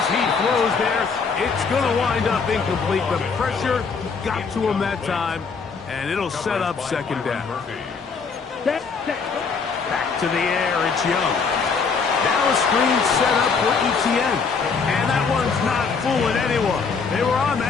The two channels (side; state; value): right; quieter; 5.2 dB